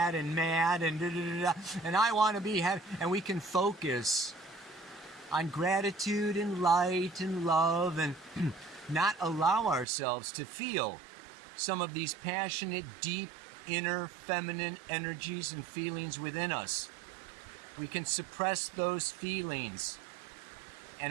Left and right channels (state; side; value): drops out; left; at 9.9 s